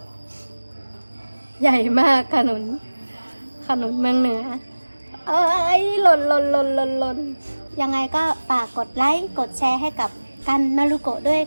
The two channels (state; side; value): inverted; both; correlation -1.00